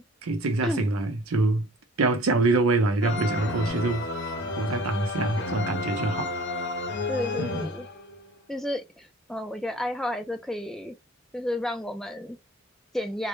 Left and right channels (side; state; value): both; normal; correlation 0.48